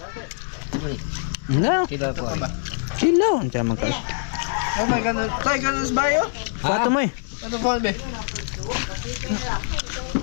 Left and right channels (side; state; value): right; silent; 63 dB below the other